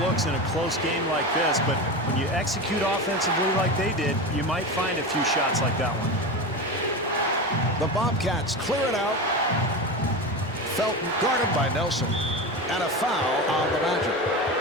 in a close game like this, but when you execute offensively like they did, you might find a few shots like that one. The Bobcats clear it out. Felton guarded by Nelson. And a foul on the Magic.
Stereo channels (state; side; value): normal; both; correlation 0.23